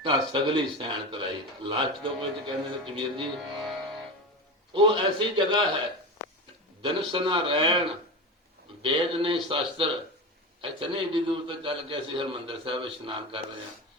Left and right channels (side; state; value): both; normal; correlation 0.23